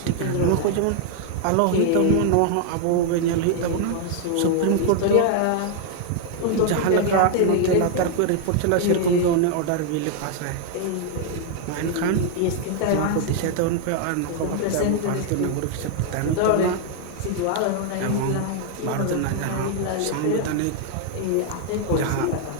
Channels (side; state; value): both; different; correlation 0.00